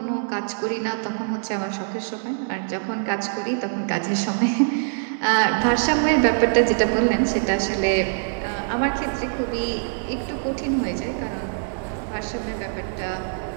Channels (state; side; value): silent; left; digital silence